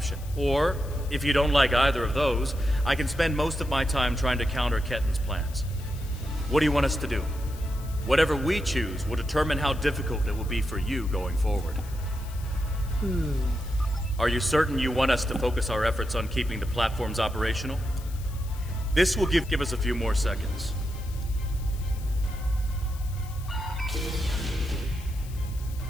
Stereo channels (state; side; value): noise; left; hiss, 19 dB below the sound